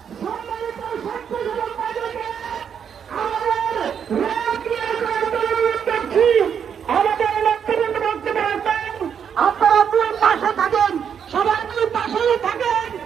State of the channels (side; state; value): left; quieter; 7.7 dB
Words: সম্মানিত ছাত্রজীবন বাজারকে আমাদের আমাদের নেতৃবৃন্দ বক্তব্য রাখবেন। আপনারা দুই পাশে থাকেন, সবাই দুই পাশে থাকেন,